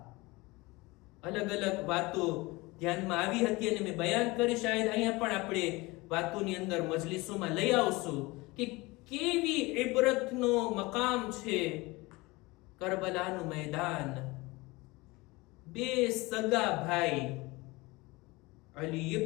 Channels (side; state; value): right; quieter; 22.9 dB